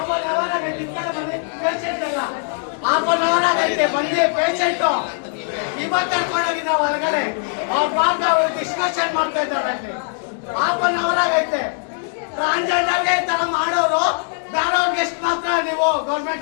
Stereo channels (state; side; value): silent; right; 62 dB below the other